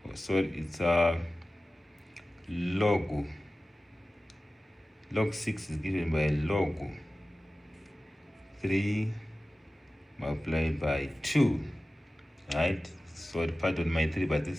it's log 6 is given by log 3 multiplied by 2, right? So pardon my 3, but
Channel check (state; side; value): normal; both; correlation 0.96